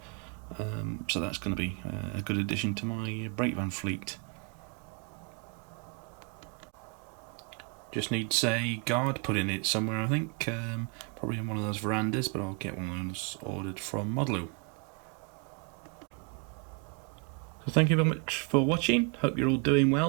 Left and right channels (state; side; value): quieter; left; 35.3 dB